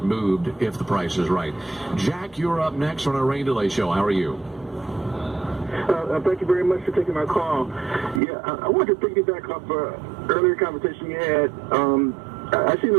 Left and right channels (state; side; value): drops out; left; at 8.2 s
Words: moved if the price is right. Jack, you're up next on our Rain Delay Show. How are you? Thank you very much for taking my call. Yeah, I wanted to piggyback off an earlier conversation you had. I seem to